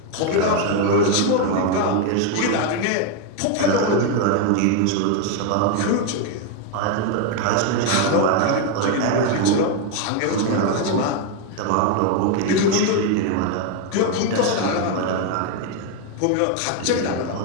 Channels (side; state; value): both; different; correlation 0.02